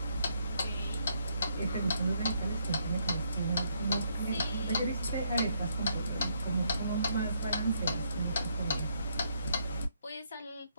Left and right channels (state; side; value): inverted; both; correlation -0.73